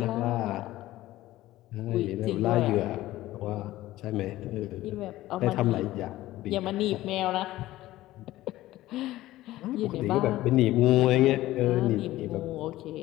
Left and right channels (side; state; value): right; quieter; 16.0 dB